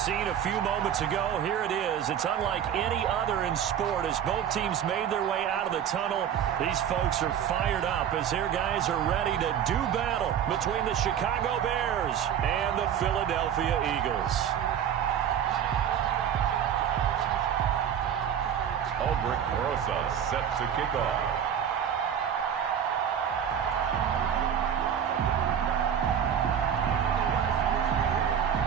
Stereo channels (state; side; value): quieter; left; 8.9 dB